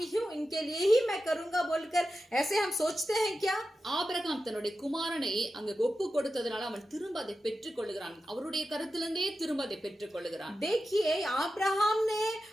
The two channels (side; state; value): both; normal; correlation 0.92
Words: हूँ, इनके लिए ही मैं करूंगा बोलकर ऐसे हम सोचते हैं क्या? ஆபிரகாம் தன்னுடைய குமாரனை அங்க ஒப்பு கொடுத்ததுனால அவன் திரும்ப அதை பெற்றுக் கொள்ளுகிறான். அவருடைய கருத்திலிருந்தே திரும்ப அதை பெற்றுக் கொள்ளுகிறான். देखिए अब्राहम ने